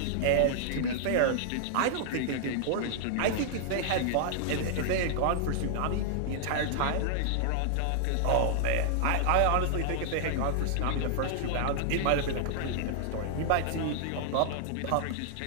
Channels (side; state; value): both; different; correlation -0.01